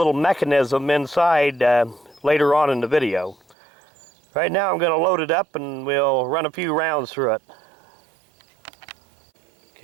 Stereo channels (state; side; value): drops out; left; at 3.6 s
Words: mechanism inside later on in the video. Right now I'm going to load it up and we'll run a few rounds through it.